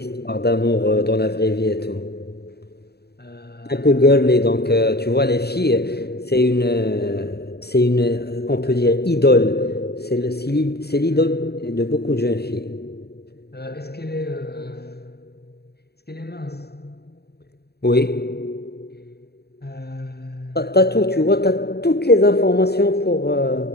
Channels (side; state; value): right; late; 0.47 ms